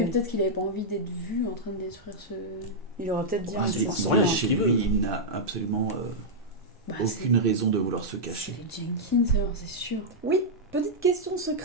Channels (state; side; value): normal; both; correlation -0.06